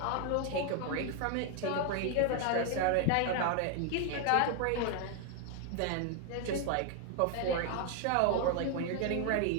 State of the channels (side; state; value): both; different; correlation 0.00